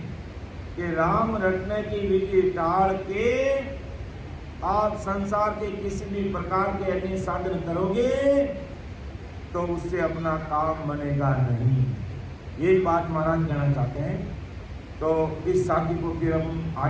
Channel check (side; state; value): both; identical; correlation 1.00